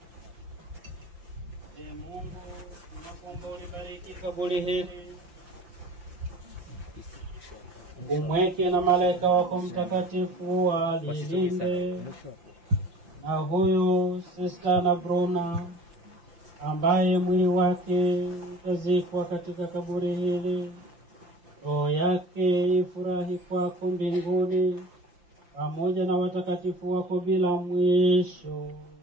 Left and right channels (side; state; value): left; late; 5.8 ms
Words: Mungu, tunakuomba ulibariki kaburi hili. Umweke na malaika wako mtakatifu walilinde. Na huyu Sister Anna Bruna ambaye mwili wake utazikwa katika kaburi hili, roho yake ifurahi kwako mbinguni pamoja na watakatifu wako bila mwisho.